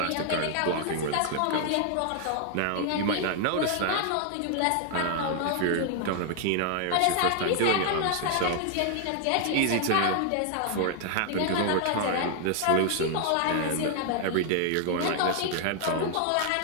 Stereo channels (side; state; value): both; different; correlation 0.00